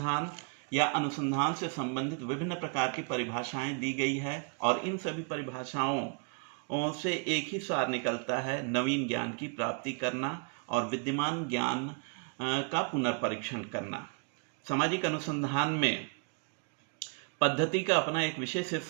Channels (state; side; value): quieter; left; 36.9 dB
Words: या अनुसंधान से संबंधित विभिन्न प्रकार की परिभाषाएं दी गई है और इन सभी परिभाषाओं से एक ही सार निकलता है: नवीन ज्ञान की प्राप्ति करना और विद्यमान ज्ञान का पुनर्परीक्षण करना। सामाजिक अनुसंधान में पद्धति का अपना एक विशेष